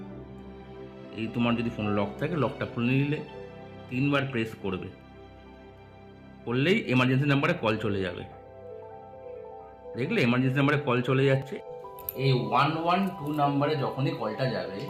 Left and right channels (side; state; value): both; identical; correlation 1.00